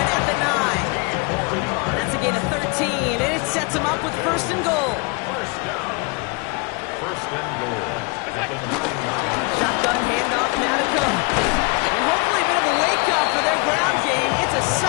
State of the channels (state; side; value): quieter; right; 30.2 dB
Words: the 9. That's a gain of 13, and it sets him up with 1st and goal. First down. 1st and goal. At the 9-yard. Shotgun handoff now to Cook. And hopefully a bit of a wake-up for their ground game. It's a